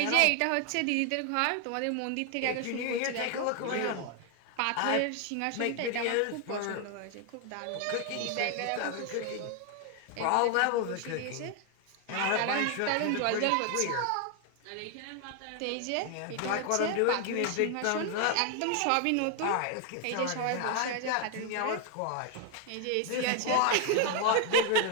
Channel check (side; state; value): both; different; correlation 0.00